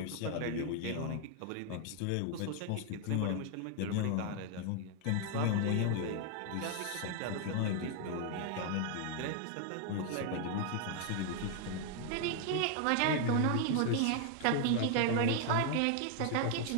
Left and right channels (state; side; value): different; both; correlation 0.00